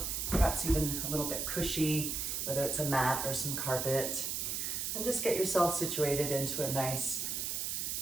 perhaps even a little bit cushy, whether it's a mat or some carpet, and just get yourself situated into a nice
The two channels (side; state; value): right; noise; hiss, 1 dB below the sound